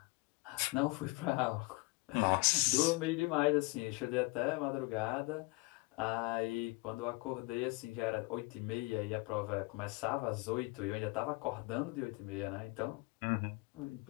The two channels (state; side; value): quieter; right; 26.4 dB